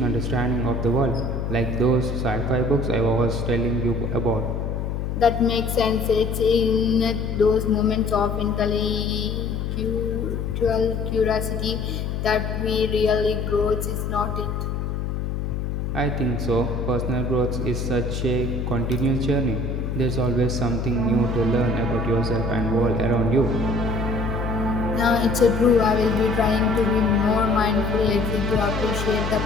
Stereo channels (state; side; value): noise; left; hum, 3 dB below the sound